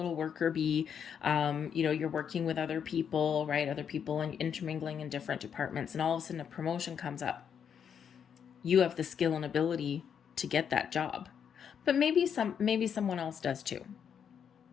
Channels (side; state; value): right; quieter; 7.8 dB